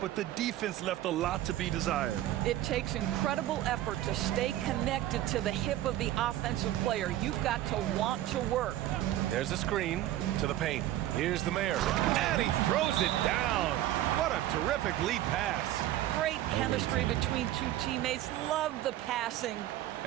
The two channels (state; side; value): quieter; left; 13.8 dB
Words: but the defense left a lot to be desired. It takes incredible effort to stay connected to the hip of the offensive player. You've got to want to work. There's a screen to the paint. Here's the mayor. And he throws it down. What a terrific lead pass. Great chemistry between two teammates. Love the passing.